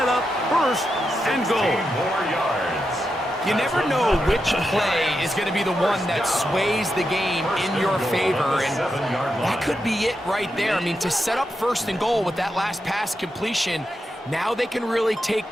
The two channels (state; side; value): normal; both; correlation 0.86